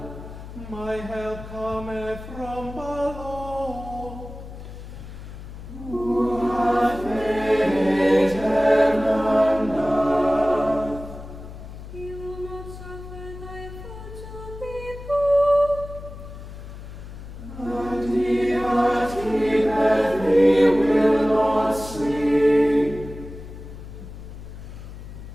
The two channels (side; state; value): left; noise; hum, 13 dB below the sound